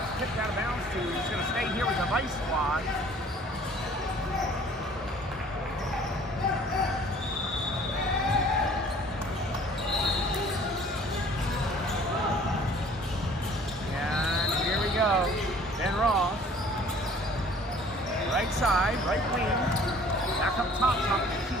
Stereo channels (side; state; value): both; normal; correlation 0.52